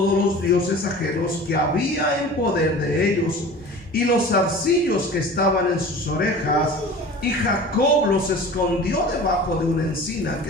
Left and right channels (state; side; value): normal; both; correlation 0.39